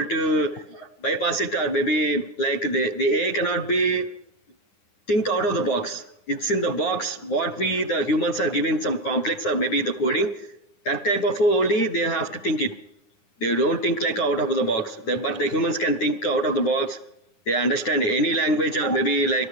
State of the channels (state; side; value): late; right; 9.8 ms